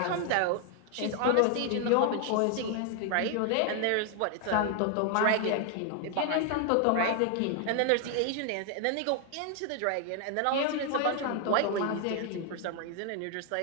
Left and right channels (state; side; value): different; both; correlation 0.00